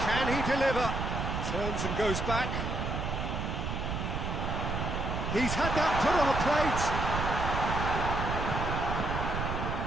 Can he deliver? Turns and goes back. He's had that put on a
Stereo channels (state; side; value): noise; right; rumble, 2 dB below the sound